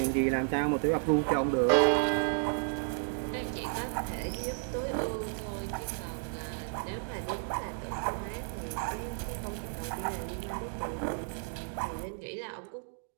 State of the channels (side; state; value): left; silent; 56 dB below the other